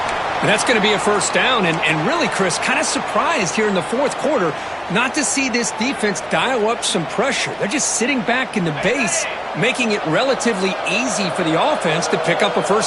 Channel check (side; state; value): both; identical; correlation 1.00